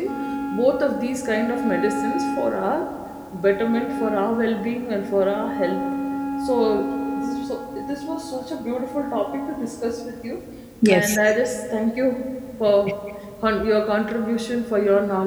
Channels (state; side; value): identical; both; correlation 1.00